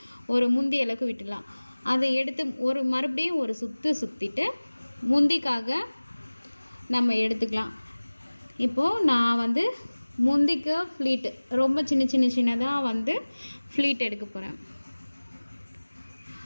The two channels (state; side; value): inverted; both; correlation -1.00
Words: ஒரு முந்தி அளவுக்கு விட்டுடலாம். அதை எடுத்து மறுபடியும் ஒரு சுற்றிட்டு முந்திக்காக நம்ம எடுத்துக்கலாம். இப்போது நான் வந்து முந்திக்கு ஃப்ளீட்டு ரொம்ப சின்னதாக வந்து ஃப்ளீட் எடுக்க போகிறேன்.